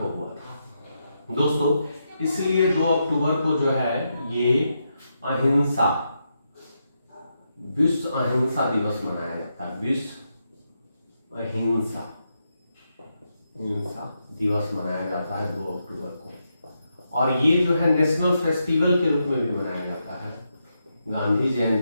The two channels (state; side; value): inverted; both; correlation -0.84